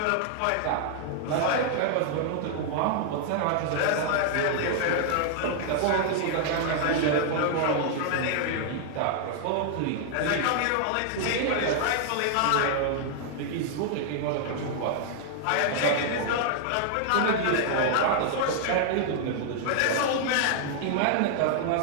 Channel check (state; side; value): different; both; correlation 0.00